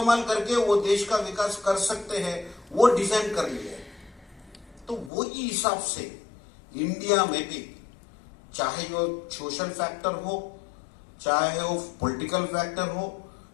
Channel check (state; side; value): drops out; right; at 5.1 s